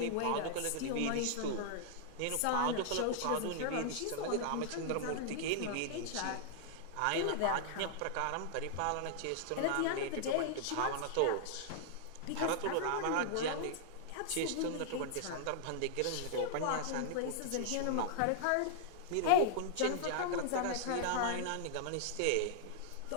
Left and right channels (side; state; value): both; different; correlation 0.00